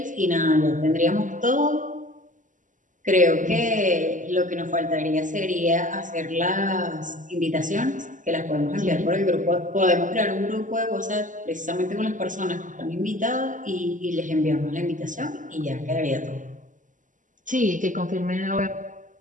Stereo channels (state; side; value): late; left; 0.37 ms